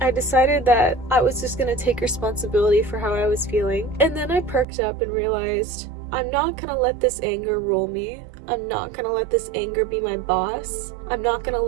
I decided that I was just going to take responsibility for how I was feeling. And then I perked up and realized I'm not gonna let this anger rule me. I'm not gonna let this anger be my boss. I'm not gonna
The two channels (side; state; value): left; drops out; at 4.7 s